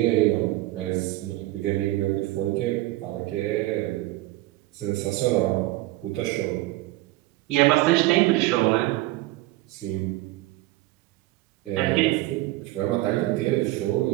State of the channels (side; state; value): left; quieter; 18.0 dB